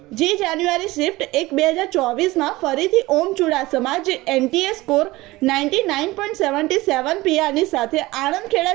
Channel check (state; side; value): quieter; left; 19.7 dB